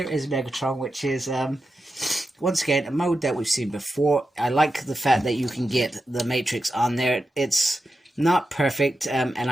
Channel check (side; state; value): both; normal; correlation 0.90